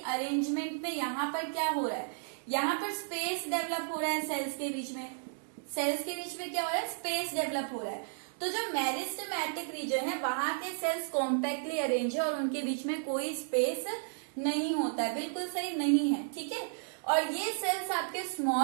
में यहाँ पर क्या हो रहा है, यहाँ पर स्पेस डेवलप हो रहा है सेल्स के बीच में। सेल्स के बीच में क्या हो रहा है, स्पेस डेवलप हो रहा है। तो जो मेरिस्टेमेटिक रीजन है वहां के सेल्स कॉम्पैक्टली अरेंज है और उनके बीच में कोई स्पेस नहीं होता है, बिल्कुल सही नहीं है, ठीक है। और ये सेल्स आपके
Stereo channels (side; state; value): left; silent; digital silence